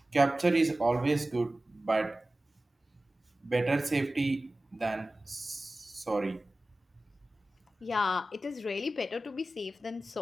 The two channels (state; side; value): normal; both; correlation 0.96